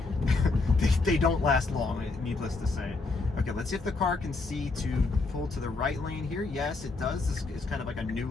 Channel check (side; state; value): right; quieter; 3.7 dB